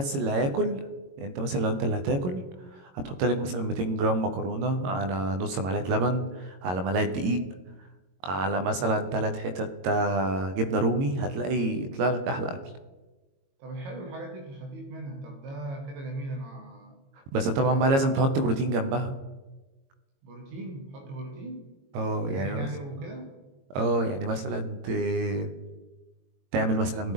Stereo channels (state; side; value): late; left; 22 ms